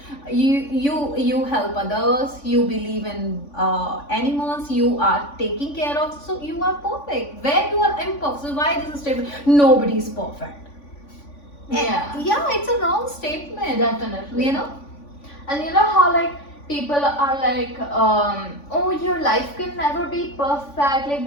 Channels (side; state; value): right; late; 3.5 ms